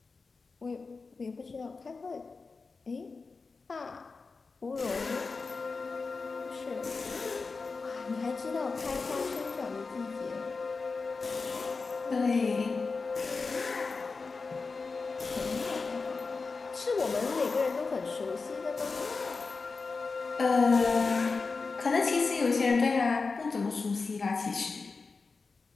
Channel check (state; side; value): quieter; right; 4.3 dB